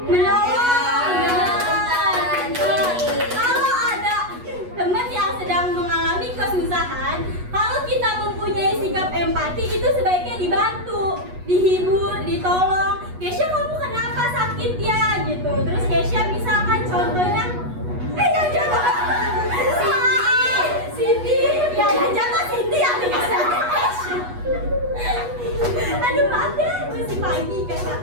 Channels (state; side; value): late; left; 8.2 ms